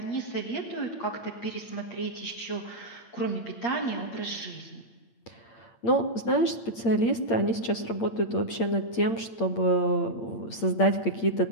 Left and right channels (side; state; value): right; late; 8.7 ms